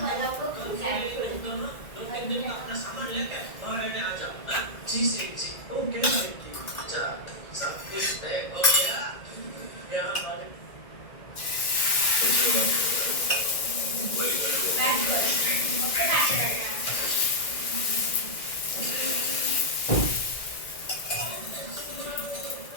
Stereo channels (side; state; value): right; late; 2.0 ms